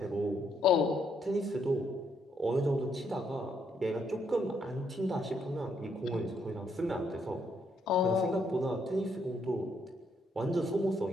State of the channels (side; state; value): both; normal; correlation 0.73